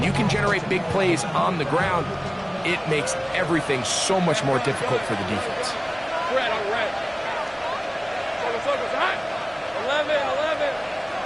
you can generate big plays on the ground, it makes everything so much more difficult for the defense. Red, on red. Focus, hot. 11.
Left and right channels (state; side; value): identical; both; correlation 1.00